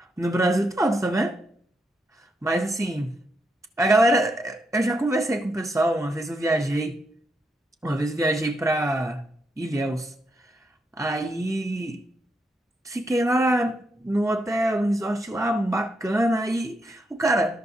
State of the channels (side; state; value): both; normal; correlation 0.81